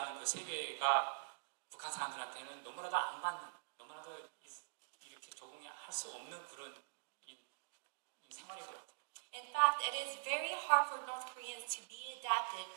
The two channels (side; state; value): left; silent; digital silence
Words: 그 세계가 북한 사람들한테는 너무나도 너무나도 이렇게 적응이 할 수 없는 그런 생활인 것 같아요. In fact, it is very hard for North Koreans to be adapted